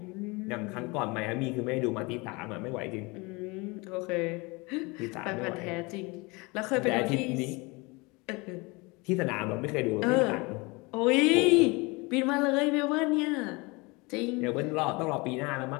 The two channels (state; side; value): quieter; right; 26.2 dB